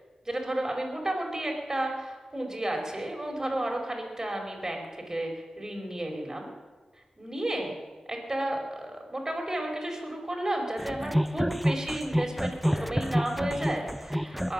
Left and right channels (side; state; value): both; normal; correlation 0.96